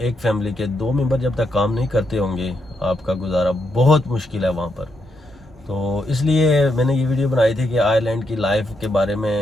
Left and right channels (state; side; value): normal; both; correlation 0.80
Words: फैमिली के 2 मेंबर जब तक काम नहीं करते होंगे, आपका गुजारा बहुत मुश्किल है वहाँ पर। तो इसलिए मैंने ये वीडियो बनाई थी कि आयरलैंड की लाइफ के बारे